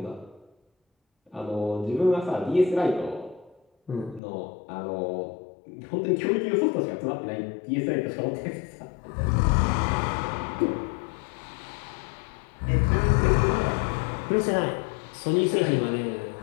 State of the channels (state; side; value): drops out; right; at 4.2 s